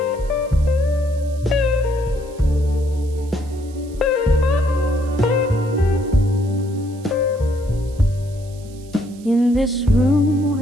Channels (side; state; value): right; noise; hiss, 25 dB below the sound